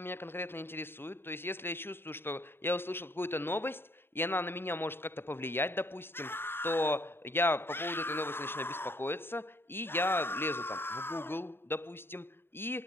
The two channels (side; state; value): right; late; 0.11 ms